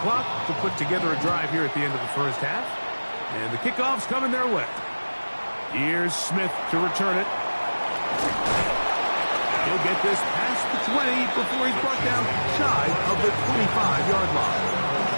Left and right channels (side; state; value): both; inverted; correlation -1.00